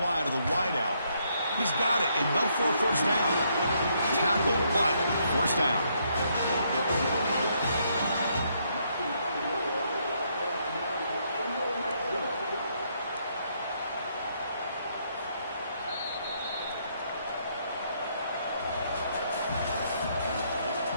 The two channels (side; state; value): both; inverted; correlation -0.73